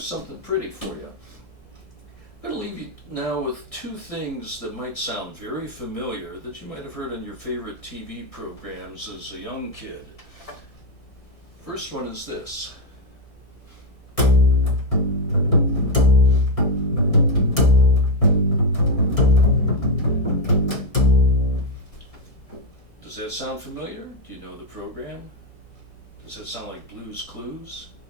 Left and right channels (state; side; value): late; right; 1.6 ms